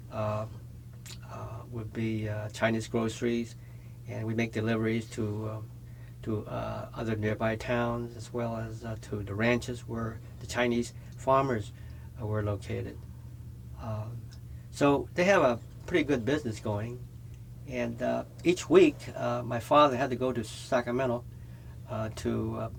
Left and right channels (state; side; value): identical; both; correlation 1.00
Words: uh, Chinese groceries, and we make deliveries to other nearby towns as well as to the ranches where the Chinese farmers were located. Um, so they have a pretty good business going. And each week, my father had to go to Sacramento to